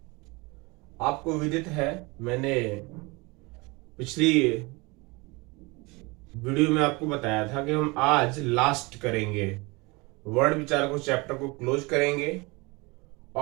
आपको विदित है, मैंने पिछली वीडियो में आपको बताया था कि हम आज लास्ट करेंगे, वर्ण विचार को चैप्टर को क्लोज करेंगे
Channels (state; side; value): quieter; left; 25.8 dB